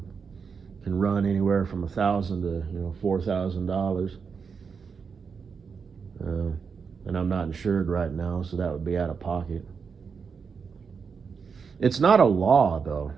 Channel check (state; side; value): quieter; left; 5.8 dB